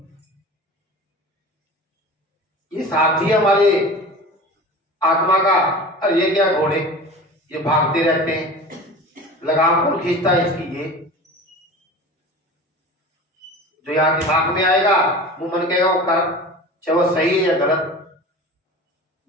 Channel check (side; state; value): both; normal; correlation 0.36